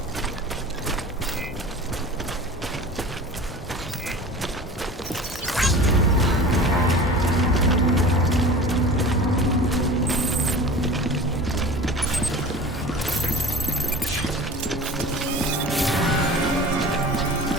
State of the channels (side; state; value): both; normal; correlation 0.37